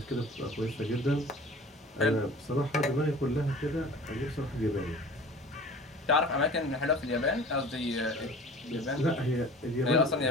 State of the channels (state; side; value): normal; both; correlation 0.43